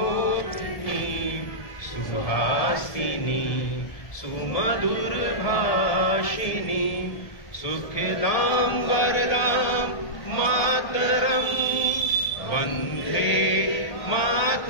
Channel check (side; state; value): right; late; 1.8 ms